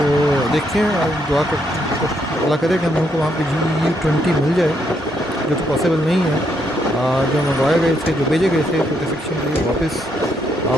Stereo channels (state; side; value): normal; both; correlation 0.76